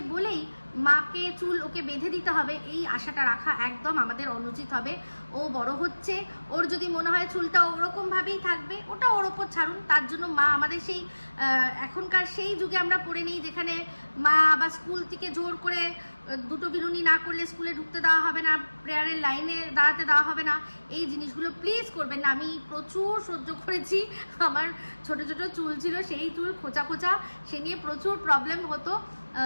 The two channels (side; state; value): both; inverted; correlation -1.00